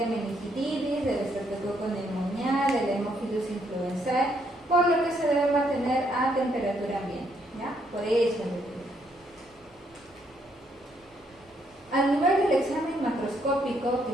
meningitidis, del Streptococcus pneumoniae, del Haemophilus influenzae, por lo que se debe mantener a temperatura ambiente, ¿ya? Por eso es el al nivel del examen macroscópico, microscópico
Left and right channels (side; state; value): both; normal; correlation 0.72